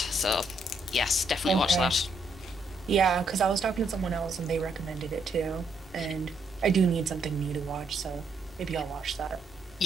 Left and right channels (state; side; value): normal; both; correlation 0.75